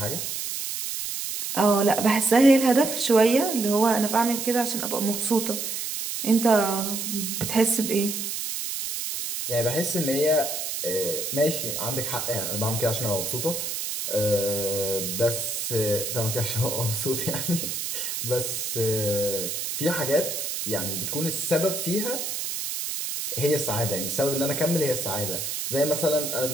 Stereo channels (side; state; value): right; noise; hiss, 4 dB below the sound